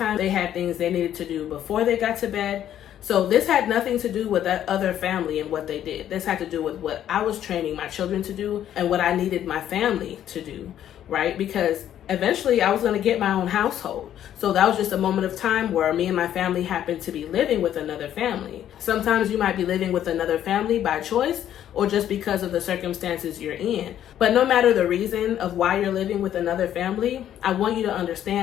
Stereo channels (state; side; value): quieter; right; 10.9 dB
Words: They had things they needed to do before they got to bed. So this had nothing to do with that other family and what they did. This had to do with what I was training my children to do and what I needed my family to do, right? Because eventually I was going to get my own household. So that was just a moment of time where me and my family happened to be living with another family. Sometimes you might be living with another family by choice or just because of the circumstances you're in. But no matter the reason of why you're living with another family, I want you to